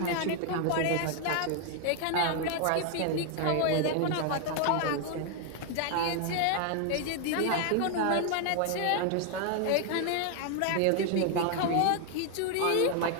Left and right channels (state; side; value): different; both; correlation 0.00